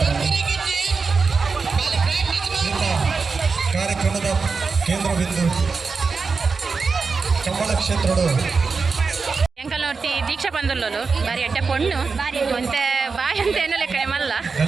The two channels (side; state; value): left; quieter; 4.7 dB